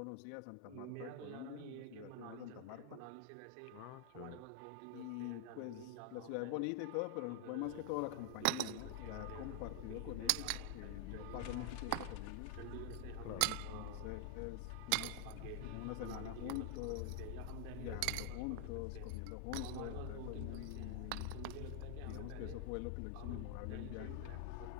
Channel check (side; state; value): both; different; correlation 0.00